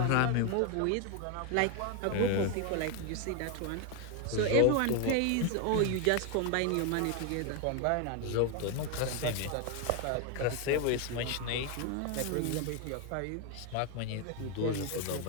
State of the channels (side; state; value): both; different; correlation 0.01